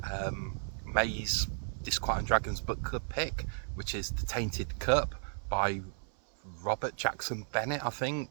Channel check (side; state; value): left; silent; 55 dB below the other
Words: May's Disquiet and Dragons book club pick, which is The Tainted Cup by Robert Jackson Bennett, I